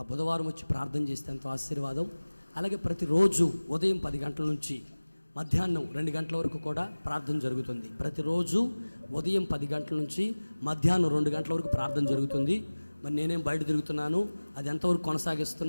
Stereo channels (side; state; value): both; inverted; correlation -1.00